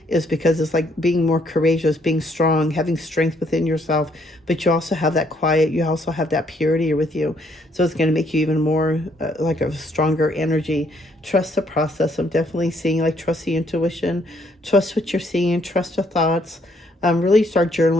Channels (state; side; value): normal; both; correlation 0.69